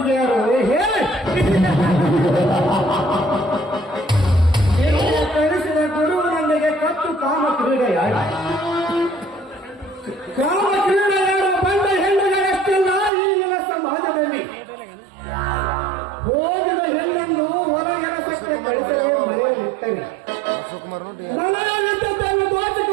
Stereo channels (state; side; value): drops out; left; at 13.1 s